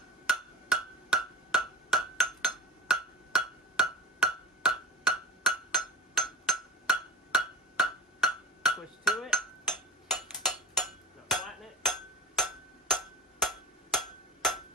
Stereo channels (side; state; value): both; normal; correlation 0.32